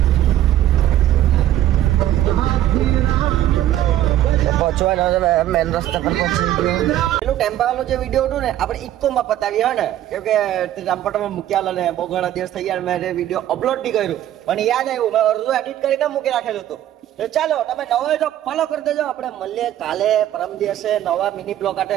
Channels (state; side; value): quieter; left; 12.6 dB